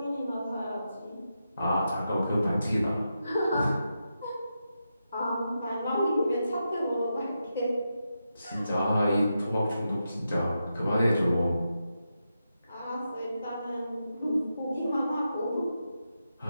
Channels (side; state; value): both; inverted; correlation -0.87